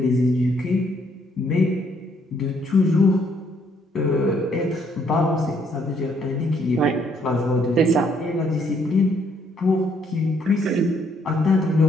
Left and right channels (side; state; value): both; normal; correlation 0.69